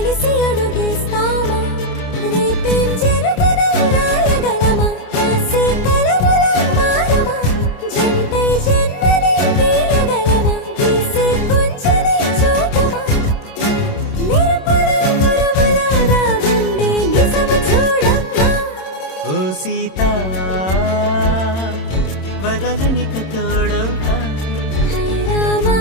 అడుగేస్తామా రేపేం జరుగునో రాయగలమా రాసే కలముల మారమా జంటై జన్మని గీయగలమా గీసే కొంచెని చూపుమా మెరుపుల మురముల దాగుండే నిజము చూడమ్మా ఓ సీత వదలనిక తోడవుతా హై రామా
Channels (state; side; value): late; right; 26 ms